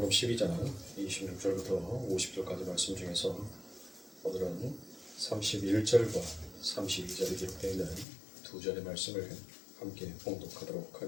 12장 26절부터 50절까지 말씀 중에서 오늘은 31절과 32절에 기록되어 있는 두 절의 말씀을 함께 봉독하도록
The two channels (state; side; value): drops out; right; at 8.1 s